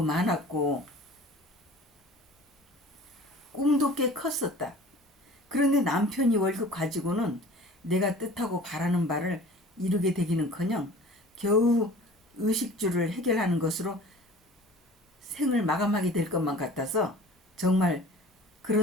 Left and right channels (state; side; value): normal; both; correlation 0.44